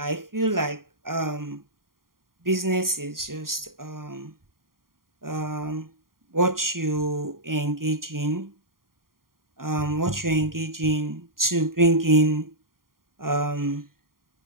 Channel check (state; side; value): late; left; 0.91 ms